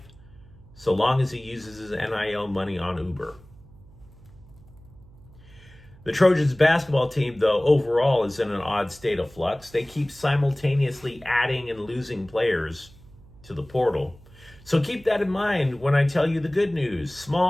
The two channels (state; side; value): noise; right; hum, 23 dB below the sound